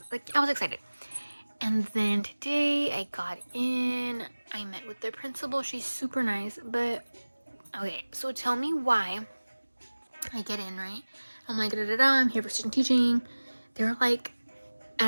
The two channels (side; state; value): both; inverted; correlation -1.00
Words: like, I was excited. And then today I got in, I met with their principal. She's super nice, but okay, so tell me why I get in, right? I'm like, da da da, I'm here for student teaching. They're like,